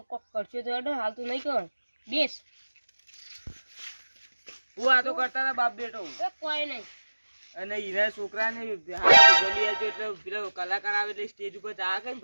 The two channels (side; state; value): both; inverted; correlation -1.00